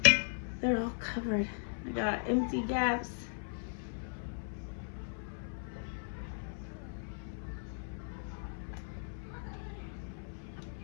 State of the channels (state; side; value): silent; right; 53 dB below the other